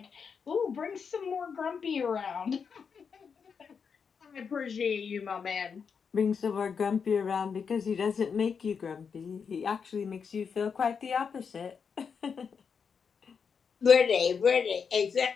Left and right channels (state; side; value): quieter; right; 6.2 dB